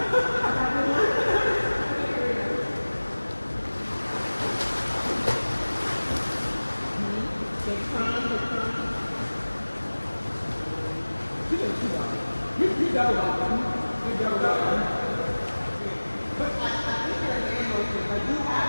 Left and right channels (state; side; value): inverted; both; correlation -1.00